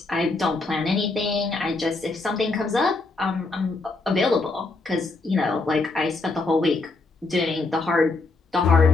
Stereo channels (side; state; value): right; quieter; 3.5 dB